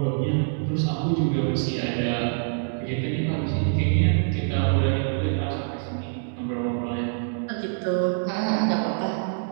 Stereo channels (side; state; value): left; silent; digital silence